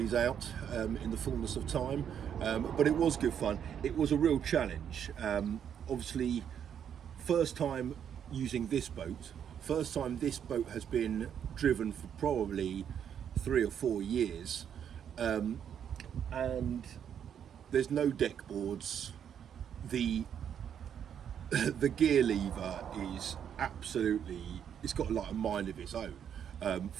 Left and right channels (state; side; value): quieter; left; 8.6 dB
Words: out in the fullness of time, but it was good fun. It was a real challenge. Obviously, first time using this boat. First time this boat has been driven for probably 3 or 4 years, and there's no deck boards. The gear lever is absolutely, it's got like a mind of its own.